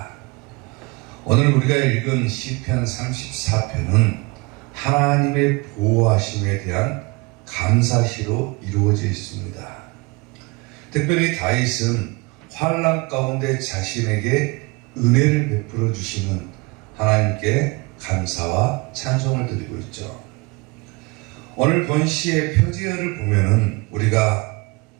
오늘 우리가 읽은 시편 34편은 하나님의 보호하심에 대한 감사시로 이루어져 있습니다. 특별히 다윗은 환난 가운데 자신에게 은혜를 베풀어 주시는 하나님께 감사와 찬송을 드리고 있죠. 오늘 본시의 표지어를 보면은 우리가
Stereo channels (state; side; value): quieter; left; 26.7 dB